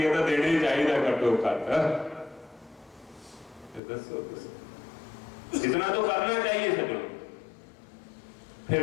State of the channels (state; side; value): drops out; right; at 3.8 s